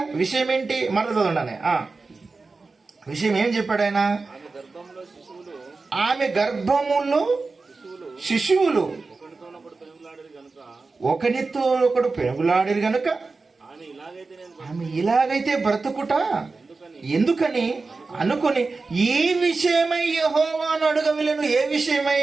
విషయం ఏంటి? మరల చదవండి. విషయం ఏం చెప్పాడు ఆయన? ఆమె గర్భములో శిశువులు ఒకనితో ఒకడు పెనుగులాడిరు గనుక ఆమె ఇలాగైతే బ్రతుకుట ఎందుకని అనుకుని ఈ విషయమై యెహోవాను అడగవలెను. ఏ విషయమై?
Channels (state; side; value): quieter; left; 3.9 dB